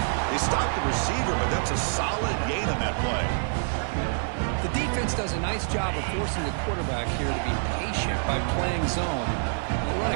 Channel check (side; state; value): left; silent; 60 dB below the other